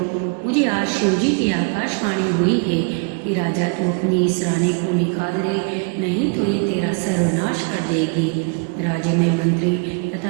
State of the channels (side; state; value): left; quieter; 34.5 dB